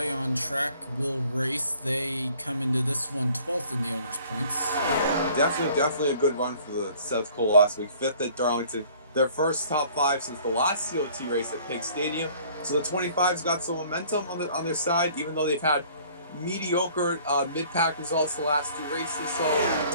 on track, will race. They come into this one 12th in the owner's points. Definitely a good run for the Seth Cole last week. 5th at Darlington. Their first top 5 since the last COT race at Pig Stadium. So the 25's got some momentum on their side, even though they've had mediocre mid-pack results the last 2 races. So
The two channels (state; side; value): inverted; both; correlation -0.54